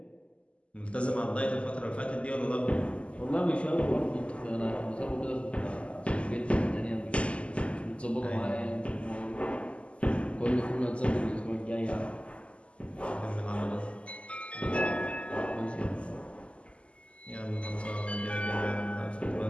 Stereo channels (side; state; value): right; late; 0.057 ms